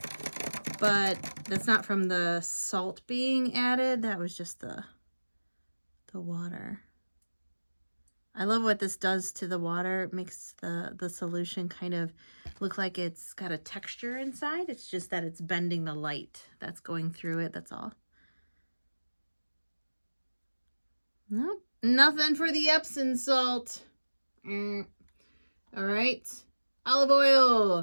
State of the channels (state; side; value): inverted; both; correlation -1.00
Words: but that's not from the salt being added. That was just the water. I love what this does to the water. It makes the solution kind of look like it's got a texture inside. It's just that it's bending the light that's going through it. That's all. Nope. Nothing for the Epsom salt. All right. Olive